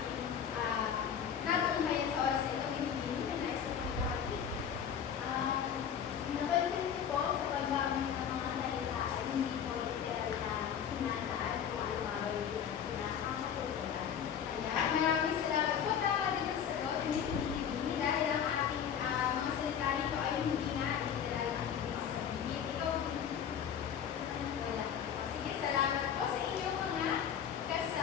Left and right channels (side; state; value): right; quieter; 8.3 dB